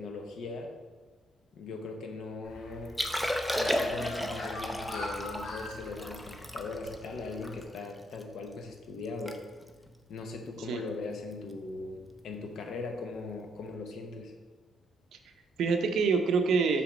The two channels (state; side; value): normal; both; correlation 0.73